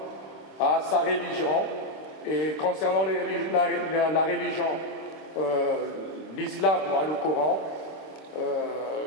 a sa religion. Et concernant la religion, l'islam a le Coran,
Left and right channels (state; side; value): late; right; 26 ms